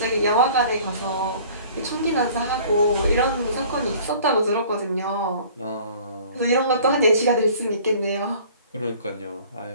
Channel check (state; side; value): inverted; both; correlation -0.49